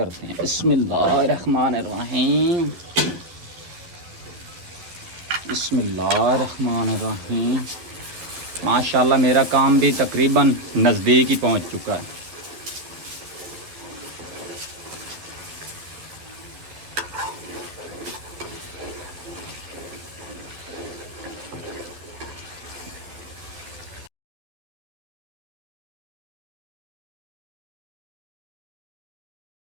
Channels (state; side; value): late; left; 11 ms